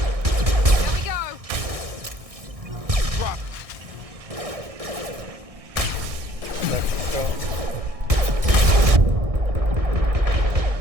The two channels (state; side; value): late; left; 1.6 ms